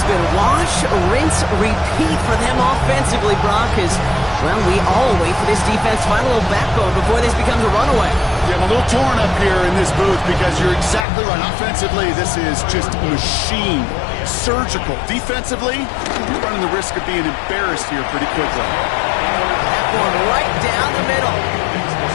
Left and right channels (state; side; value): drops out; right; at 11.1 s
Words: been wash, rinse, repeat for them offensively, Brock, as, well, we all wait for this defense to find a little backbone before this becomes a runaway. Yeah, I'm a little torn up here in this booth because you're exactly right. Offensively, this is just machine, surgical. Defensively, you're running the risk of being embarrassed here pretty quickly. That one right down the middle.